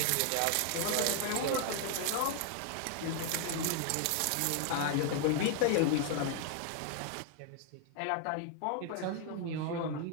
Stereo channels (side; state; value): both; different; correlation 0.00